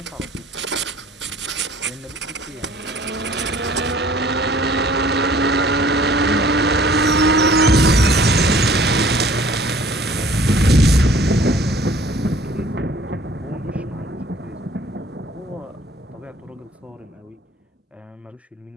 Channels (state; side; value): normal; both; correlation 0.53